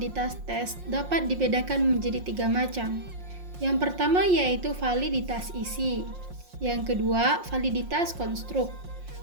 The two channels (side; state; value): left; late; 5.6 ms